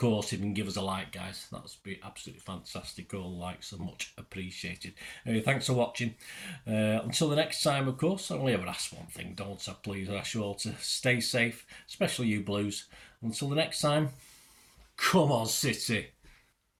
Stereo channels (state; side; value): identical; both; correlation 1.00